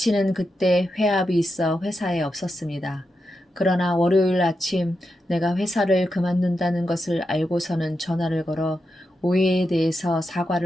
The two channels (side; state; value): both; normal; correlation 0.87